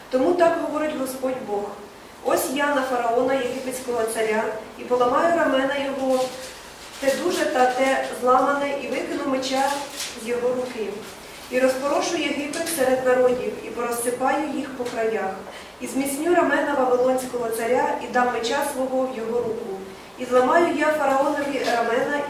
Тому так говорить Господь Бог. Ось я на фараона, єгипетського царя, і поламаю рамена його, те дуже та те зламане, і викину меча з його руки. І розпорошу Єгипет серед народів, і порозсипаю їх по краях. І зміцню рамена Вавилонського царя, і дам меча свого в його руку. І зламаю я фараонові рамена,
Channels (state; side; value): identical; both; correlation 1.00